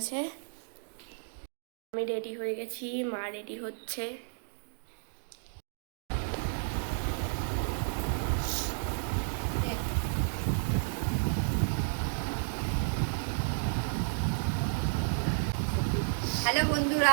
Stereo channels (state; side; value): silent; left; digital silence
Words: আমি রেডি হয়ে গেছি, মা রেডি হচ্ছে। হ্যালো